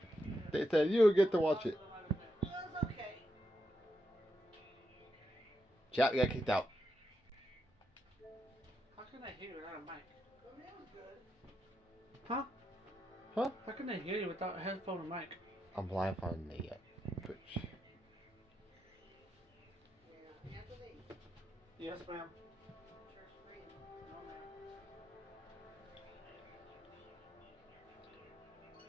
They said you get to watch it. Well, it's okay. Chat, we got kicked out. How can I hear you without a mic? I mean, it was good. Huh? Huh? How can I hear you without a headphone and mic? I'm blind on the Twitch. Yeah, Anthony. Yes, ma'am. Church screen. No, ma'am.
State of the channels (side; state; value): both; normal; correlation 0.84